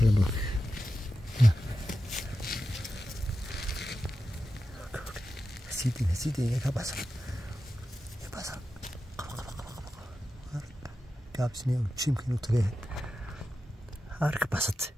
bala hasiidin ka baxsan gaabsiniya jiimka inuu tagay harka baxsatay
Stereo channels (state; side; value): normal; both; correlation 0.91